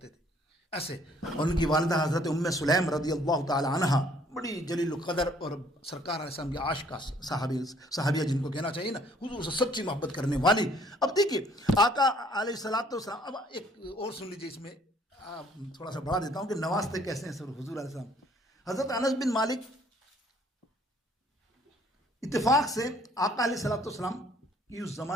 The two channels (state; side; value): normal; both; correlation 0.61